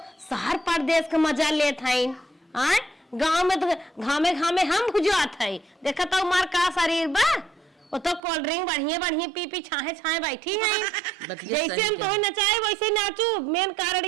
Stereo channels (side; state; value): left; drops out; at 8.2 s